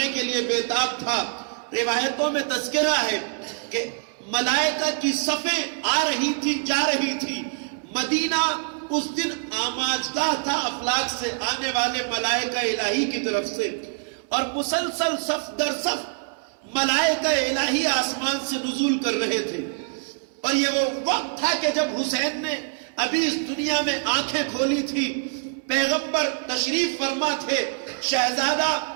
کے لیے بےتاب تھا۔ روایتوں میں تذکرہ ہے کہ ملائکہ کی صفیں آ رہی تھی جا رہی تھی۔ مدینہ اس دن آماجگاہ تھا افلاک سے آنے والے ملائکہ الہی کی طرف سے، اور مسلسل صف در صف ملائکہ الہی آسمان سے نزول کر رہے تھے۔ اور یہ وہ وقت تھا کہ جب حسین نے ابھی اس دنیا میں آنکھیں کھولی تھی، پیغمبر تشریف فرما تھے، شہزادہ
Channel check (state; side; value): silent; left; 62 dB below the other